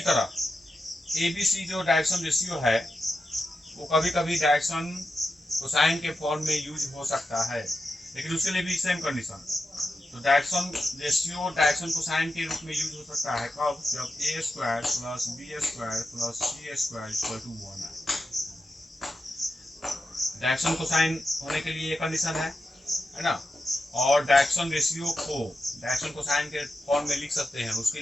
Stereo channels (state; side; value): normal; both; correlation 0.90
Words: तरह ABC जो डायरेक्शन रेशियो है वो कभी कभी डायरेक्शन कोसाइन के फॉर्म में यूज हो सकता है, लेकिन उसके लिए भी सेम कंडीशन। तो डायरेक्शन रेशियो डायरेक्शन कोसाइन के रूप में यूज हो सकता है कब, जब A square plus B square plus C square equal to 1 है। डायरेक्शन कोसाइन होने के लिए ये कंडीशन है ना, और डायरेक्शन रेशियो को डायरेक्शन कोसाइन के फॉर्म में लिख सकते हैं, उसके